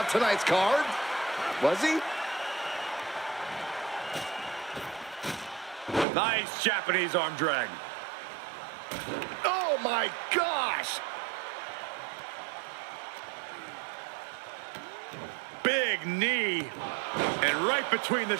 tonight's card. Was he? Nice Japanese arm drag. Oh my gosh! Big knee. And right between the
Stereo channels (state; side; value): drops out; left; at 6.1 s